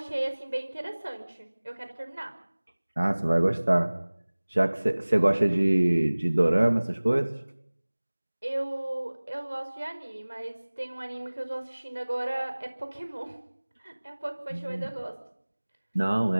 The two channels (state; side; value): inverted; both; correlation -1.00